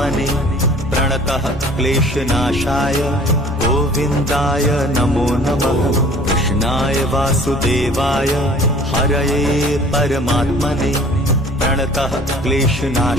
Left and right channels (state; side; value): normal; both; correlation 0.50